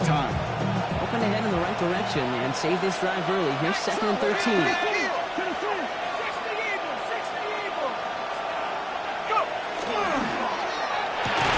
time. Hoping to head in the right direction and save this drive early. Here's 2nd and 13.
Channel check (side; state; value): both; identical; correlation 1.00